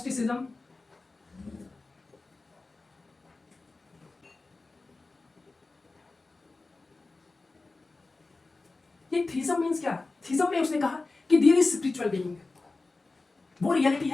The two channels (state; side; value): quieter; right; 3.5 dB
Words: ये थीज्म मीन्स क्या? थीज्म में उसने कहा कि देयर इज स्पिरिचुअल बीइंग, वो रियलिटी